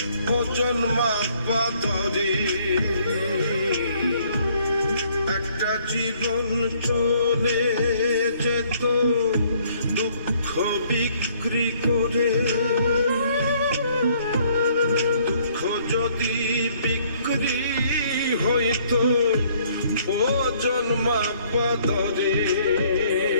ওজন মাপা ধরে একটা জীবন চলে যেত দুঃখ বিক্রি করে। দুঃখ যদি বিক্রি হইতো ওজন মাপা ধরে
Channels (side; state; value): both; inverted; correlation -0.63